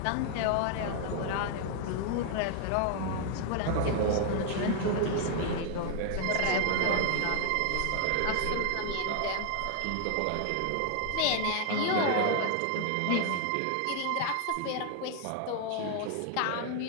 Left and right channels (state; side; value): different; both; correlation 0.00